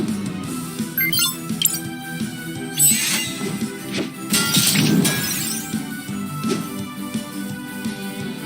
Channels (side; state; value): both; identical; correlation 1.00